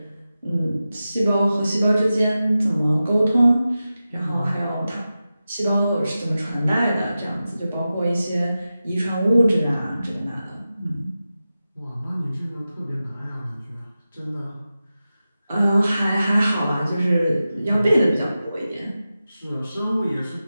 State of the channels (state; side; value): inverted; both; correlation -0.93